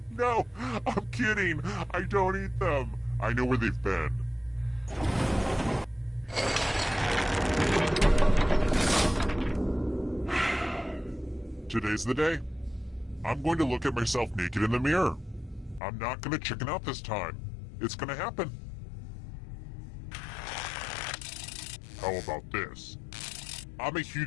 No, I'm kidding. I don't eat them. I know where they've been. Today's the day. I'm going to look at myself naked in the mirror. I'm not gonna chicken out this time. It's gonna happen. How about this? I'm a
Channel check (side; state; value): right; drops out; at 15.8 s